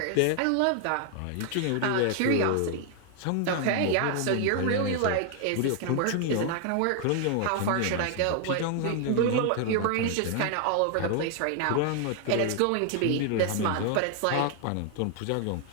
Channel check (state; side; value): different; both; correlation 0.00